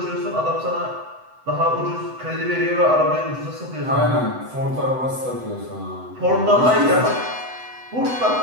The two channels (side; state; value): left; late; 7.9 ms